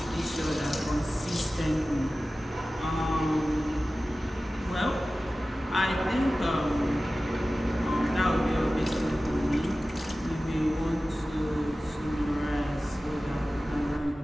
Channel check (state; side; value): normal; both; correlation 0.96